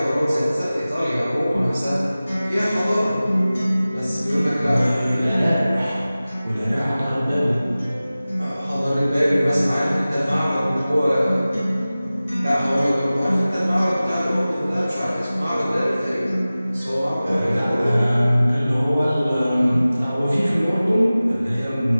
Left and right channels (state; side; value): inverted; both; correlation -0.97